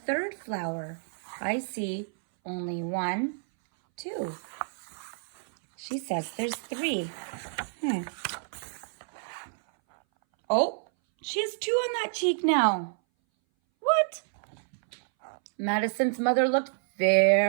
flower? I see only 1, 2. She says there's 3. Oh, she has 2 on that cheek now. What? Madison's mother looked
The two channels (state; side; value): silent; left; 59 dB below the other